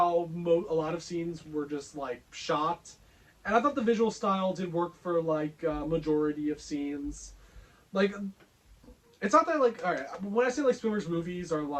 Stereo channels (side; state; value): both; identical; correlation 1.00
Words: a lot of scenes were just like shot, and I thought the visual style did work for like majority of scenes. Like, it's not that like, all right, when I say like Spielberg's movies are